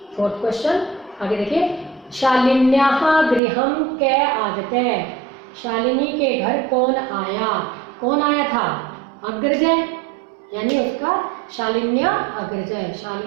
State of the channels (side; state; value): left; drops out; at 3.4 s